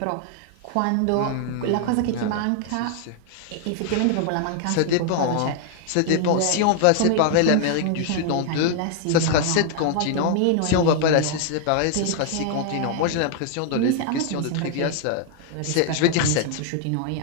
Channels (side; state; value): both; different; correlation 0.00